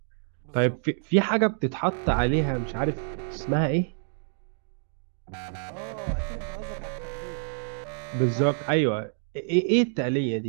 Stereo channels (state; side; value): silent; left; digital silence